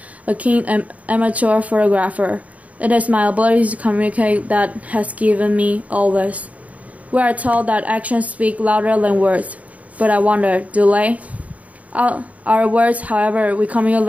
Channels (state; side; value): late; left; 0.069 ms